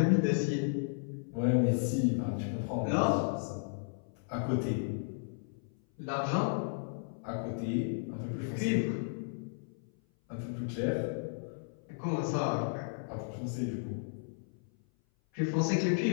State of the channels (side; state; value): right; silent; 55 dB below the other